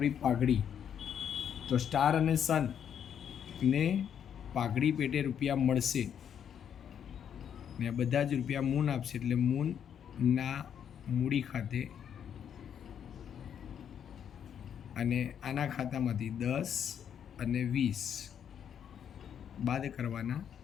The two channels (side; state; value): right; quieter; 8.6 dB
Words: પાઘડી, તો સ્ટાર અને સન ને પાઘડી પેટે રૂપિયા મળશે, ને આ બધા જ રૂપિયા મૂન આપશે, એટલે મૂનના મૂડી ખાતે. અને આના ખાતામાંથી 10 અને 20 બાદ કરવાના